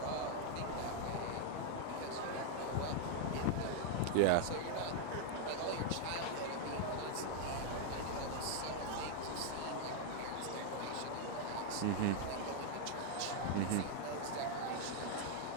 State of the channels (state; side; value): different; both; correlation 0.00